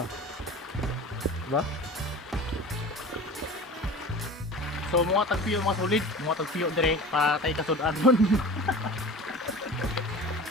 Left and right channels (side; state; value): both; normal; correlation 0.37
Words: Diba? So mga tagpiyo mga solid, mga tagpiyo dire para tay kasudan nun.